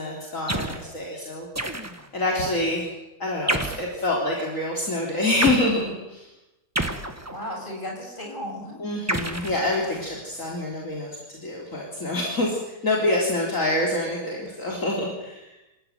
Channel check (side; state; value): both; normal; correlation -0.06